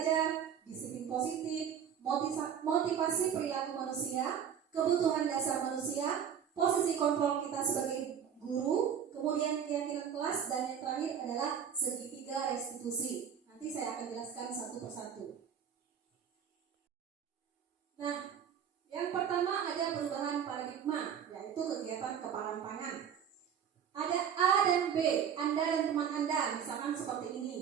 disiplin positif, motivasi perilaku manusia, kebutuhan dasar manusia, posisi kontrol kita sebagai guru, kemudian keyakinan kelas, dan yang terakhir adalah segitiga restitusi. Nanti saya akan jelaskan satu persatu. Nah, yang pertama ada perubahan paradigma, yaitu kegiatan kepalan tangan. Ada A dan B, Anda dan teman Anda, misalkan seperti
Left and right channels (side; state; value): left; quieter; 8.3 dB